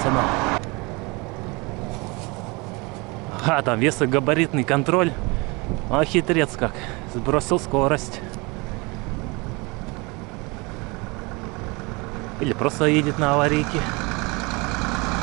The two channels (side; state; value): left; quieter; 27.0 dB